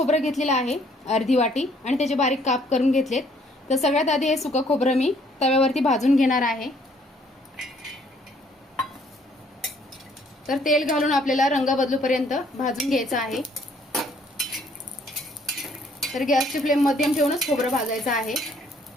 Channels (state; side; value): normal; both; correlation 0.63